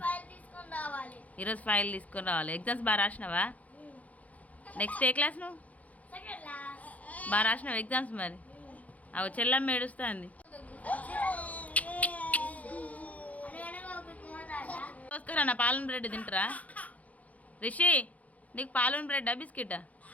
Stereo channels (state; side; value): late; right; 0.071 ms